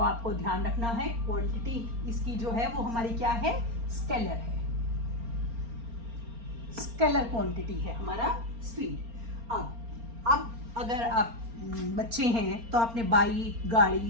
आपको ध्यान रखना है क्वांटिटी इसकी जो है वो हमारी क्या है? स्केलर है, स्केलर क्वांटिटी है हमारा स्पीड। अब अगर आप बच्चे हैं तो आपने बाइक,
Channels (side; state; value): left; late; 4.3 ms